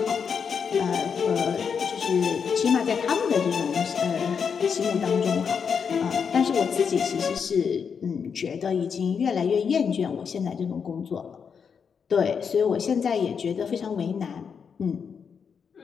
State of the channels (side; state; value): right; quieter; 6.5 dB